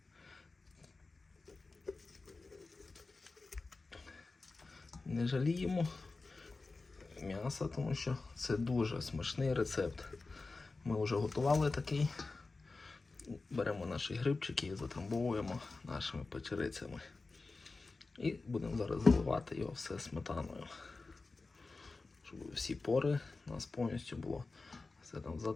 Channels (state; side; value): quieter; right; 3.7 dB